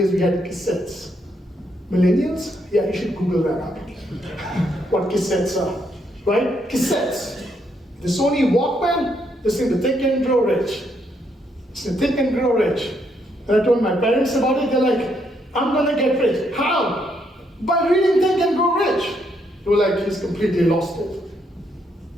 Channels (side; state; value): both; normal; correlation 0.75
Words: we had cassettes. Millennials? Yeah, you should Google that up. What cassettes are, right? Cassettes. The Sony Walkman, listen to Think and Grow Rich. Listen, Think and Grow Rich. And I told my parents about it, they're like, I'm gonna get rich. How? By reading Think and Grow Rich. They were like, he's completely lost it.